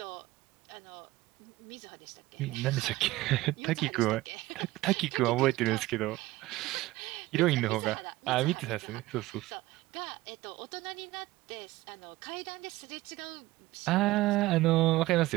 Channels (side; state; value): left; quieter; 18.1 dB